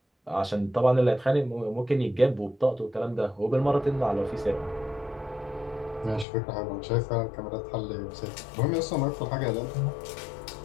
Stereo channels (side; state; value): right; drops out; at 6.2 s